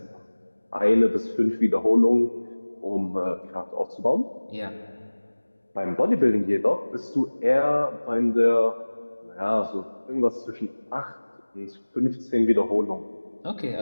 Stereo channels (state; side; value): inverted; both; correlation -1.00